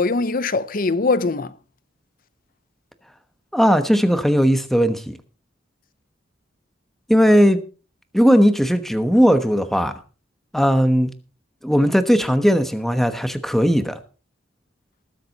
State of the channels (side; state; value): both; normal; correlation 0.89